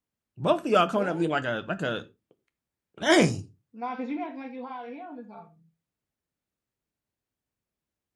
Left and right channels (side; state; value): both; identical; correlation 1.00